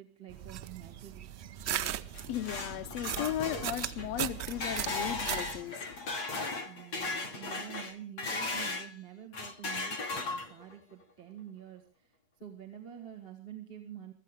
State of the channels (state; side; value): late; right; 8.4 ms